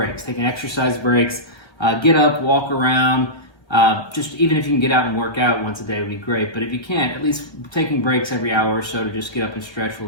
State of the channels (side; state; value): right; late; 1.4 ms